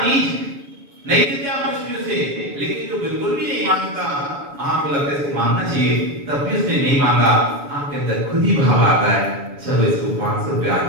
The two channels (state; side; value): late; left; 7.0 ms